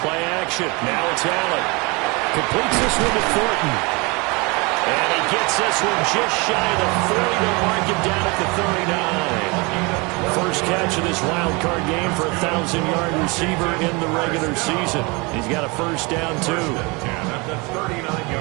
action. Now it's Allen. Completes this one to Thornton. And he gets this one just shy of the 40 to mark him down at the 39. First catch of this wild card game for a 1,000-yard receiver in the regular season. He's got a first down, too. At the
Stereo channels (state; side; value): quieter; left; 27.6 dB